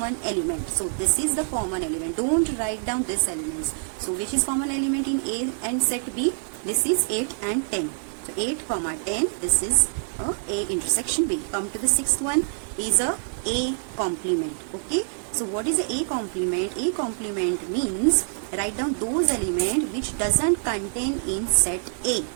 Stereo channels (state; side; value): silent; left; digital silence